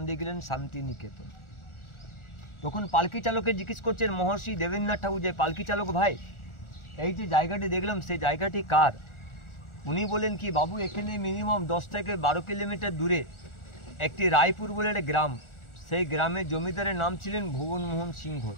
দিয়ে গেলেন শান্তিনিকেতন। তখন পালকি চালকে জিজ্ঞেস করছেন মহর্ষি দেবেন্দ্রনাথ ঠাকুর, যে পালকি চালক ভাই, এই যে জায়গাটি দেখলাম সেই জায়গাটি কার? উনি বলেন কি, বাবু এখানে মিনিমাম 10 থেকে 12 কিলোমিটার দূরে একটি রায়পুর বলে একটা গ্রাম, সেই গ্রামের জমিদারের নাম ছিলেন ভুবনমোহন সিংহ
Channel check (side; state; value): right; late; 1.4 ms